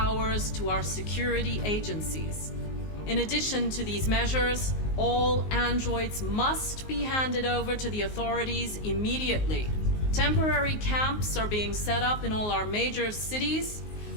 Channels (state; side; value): late; right; 19 ms